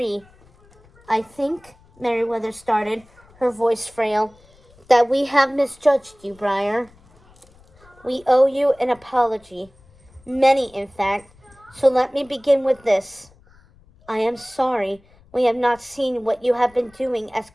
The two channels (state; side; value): noise; left; rumble, 29 dB below the sound